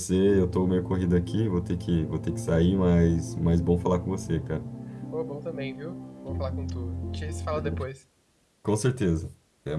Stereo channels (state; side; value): identical; both; correlation 1.00